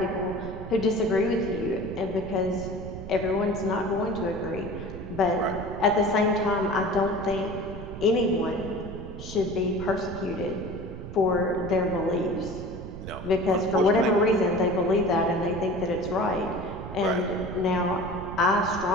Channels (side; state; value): right; noise; rumble, 10 dB below the sound